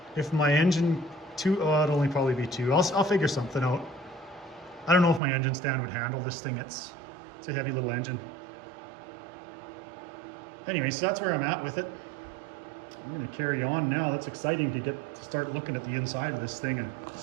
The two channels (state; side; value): drops out; left; at 5.2 s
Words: if my engine it'd only probably be 2. I'll figure something out. I don't know if my engine stand would handle this thing. It's a heavy little engine. Anyway, so that's where I'm at with it. I'm gonna carry on now. That's exciting to start looking at the inside of this thing and